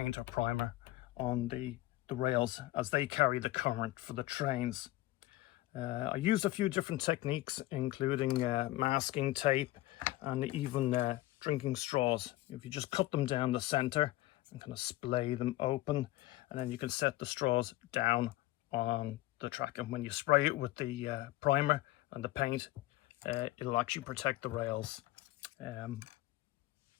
or primer on the rails, as they carry the current for the trains. I used a few different techniques, including masking tape and even drinking straws. If you just cut them down the center and kind of splay them open, and then you can set the straws down on the track, and when you spray it with the primer and the paint, it'll actually protect the rails.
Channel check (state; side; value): quieter; right; 17.0 dB